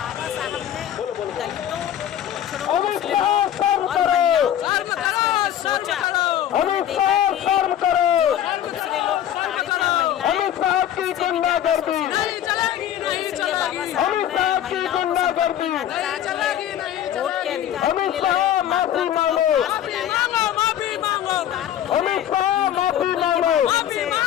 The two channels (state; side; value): quieter; right; 10.9 dB